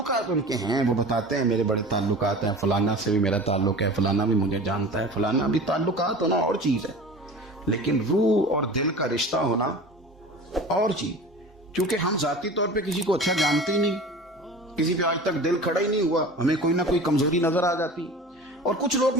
ان کے ہیں، وہ بتاتے ہیں میرے بڑے تعلقات ہیں، فلانا سے بھی میرا تعلق ہے، فلانا بھی مجھے جانتا ہے، فلانا بھی۔ تعلقات ہونا اور چیز ہے، لیکن روح اور دل کا رشتہ ہونا اور چیز۔ کیونکہ ہم ذاتی طور پہ کسی کو اچھا جانتے ہی نہیں، کسی پہ آج تک دل کھڑا ہی نہیں ہوا، ہمیں کوئی نہ کوئی کمزوری نظر آ جاتی، اور کچھ لوگ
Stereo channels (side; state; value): both; normal; correlation 0.38